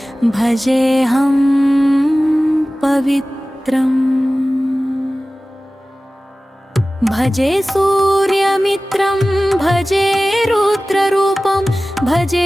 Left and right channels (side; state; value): both; normal; correlation 0.97